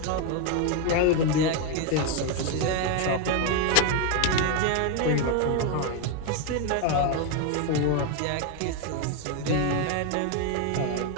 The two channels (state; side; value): different; both; correlation 0.02